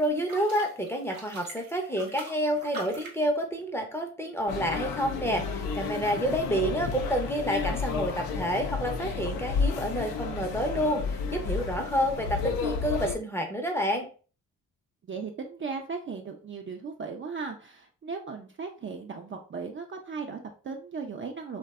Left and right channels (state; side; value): normal; both; correlation 0.46